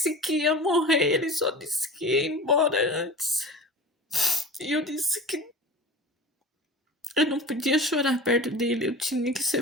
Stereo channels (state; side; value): normal; both; correlation 0.36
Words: que ia morrer, ele só disse que ia embora antes. E eu disse que eu não podia chorar perto dele, eu tinha que